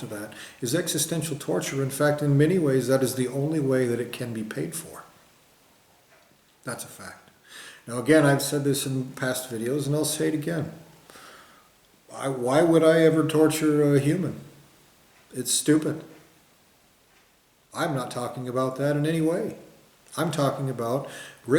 that is existential torture. In fact, in many ways, that is the only way that it can be paid for. That's a fact. Now, again, I've said this in past videos, and I'll say it again. Why would I ever torture a human? It's stupid. I'm not talking about that in any way. I'm talking about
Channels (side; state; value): both; identical; correlation 1.00